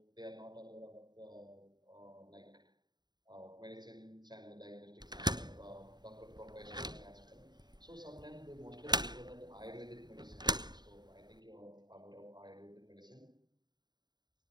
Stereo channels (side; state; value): left; late; 0.20 ms